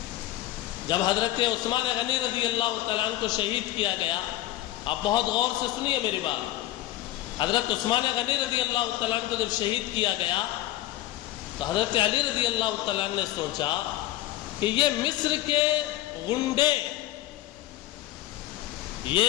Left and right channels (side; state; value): right; quieter; 15.4 dB